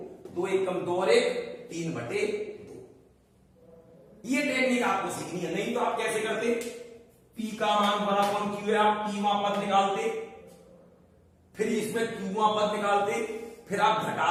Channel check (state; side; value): identical; both; correlation 1.00